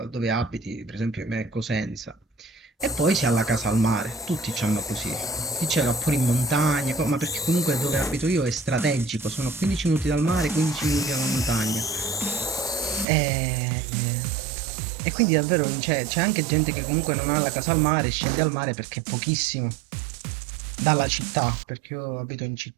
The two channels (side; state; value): left; drops out; at 13.1 s